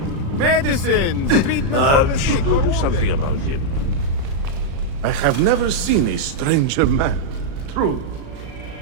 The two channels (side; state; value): left; late; 36 ms